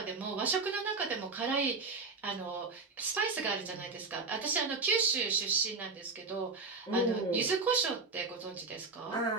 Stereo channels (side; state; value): left; quieter; 4.1 dB